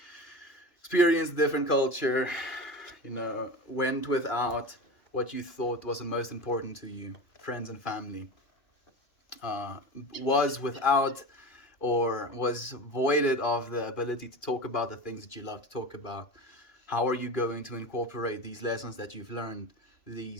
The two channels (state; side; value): late; right; 2.4 ms